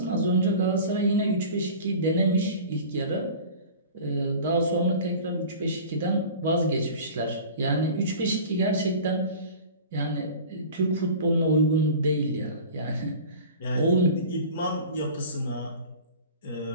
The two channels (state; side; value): inverted; both; correlation -0.39